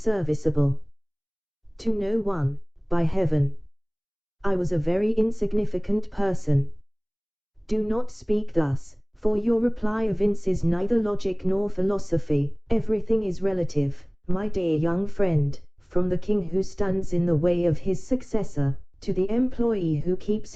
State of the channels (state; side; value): identical; both; correlation 1.00